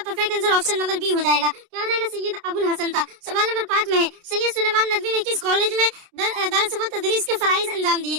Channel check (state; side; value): late; left; 29 ms